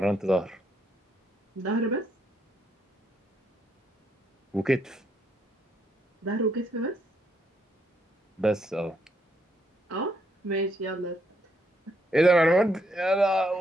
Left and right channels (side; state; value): both; normal; correlation 0.75